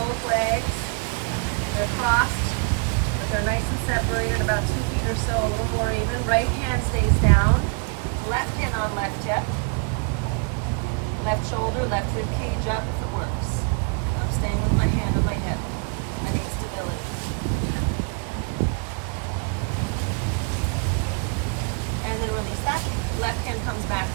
legs, they're crossed, but they're nice and separated, about 2 feet or so, a little more even. Right hand stays down. Left hand on left hip. Left shoulder, left rib cage up if it works. I'm staying with my hand on my hip. I need stability. And then release that. Left hand comes back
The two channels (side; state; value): left; quieter; 35.8 dB